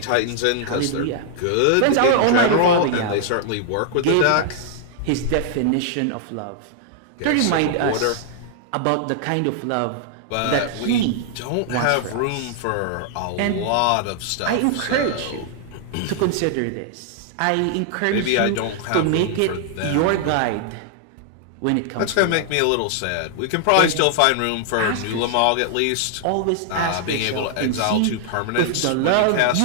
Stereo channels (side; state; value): both; different; correlation 0.00